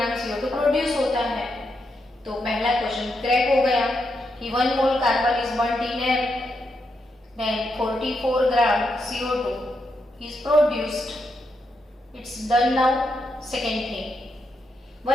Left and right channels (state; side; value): normal; both; correlation 0.83